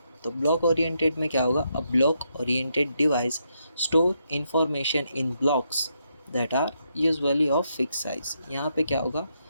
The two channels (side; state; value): both; inverted; correlation -0.79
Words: तो ब्लॉक ओरिएंटेड में क्या होगा? A block oriented device store information in blocks that are usually of fix size. यहाँ पे क्या होगा?